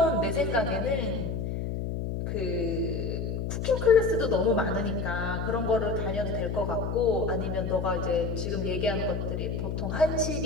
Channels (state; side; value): noise; left; hum, 3 dB below the sound